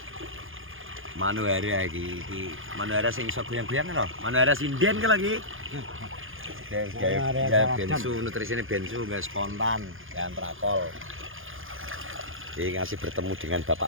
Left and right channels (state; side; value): late; left; 0.59 ms